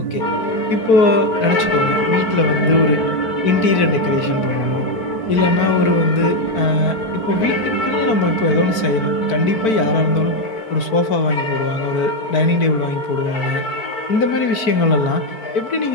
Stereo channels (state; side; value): late; right; 4.5 ms